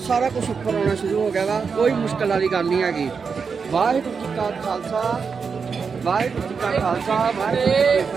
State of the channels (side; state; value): left; quieter; 5.6 dB